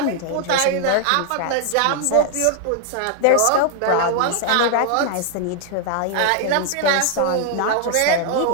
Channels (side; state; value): both; different; correlation 0.00